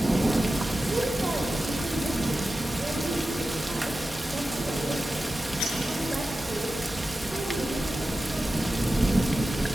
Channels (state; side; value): normal; both; correlation 0.93